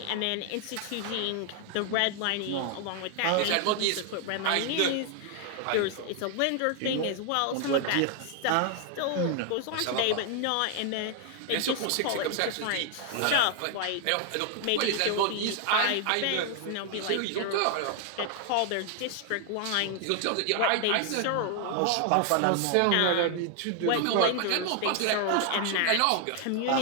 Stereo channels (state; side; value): different; both; correlation 0.00